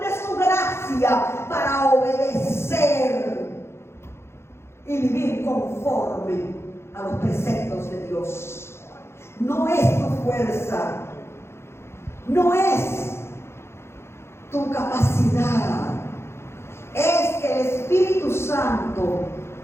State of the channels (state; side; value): late; right; 0.12 ms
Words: su gracia para obedecer y vivir conforme a los preceptos de Dios. No es tu fuerza, no es tu capacidad, es que el Espíritu Santo